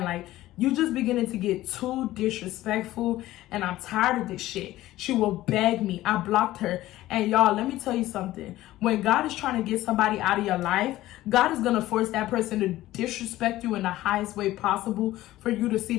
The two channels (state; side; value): quieter; right; 15.7 dB